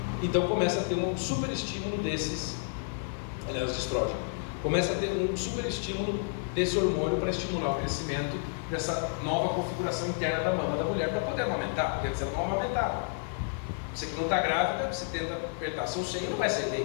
Então começa a ter um super estímulo desses, aliás, de estrógeno. Começa a ter um super estímulo desse hormônio para estimular o crescimento dessa nova configuração interna da mama da mulher para poder amamentar, porque antes ela não amamentava. Você que não está grávida, você tenta apertar seu seio e não vai sair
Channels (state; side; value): silent; right; 55 dB below the other